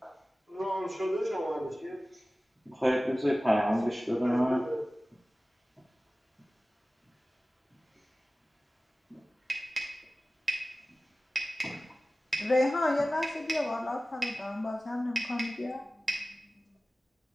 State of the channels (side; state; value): both; normal; correlation 0.97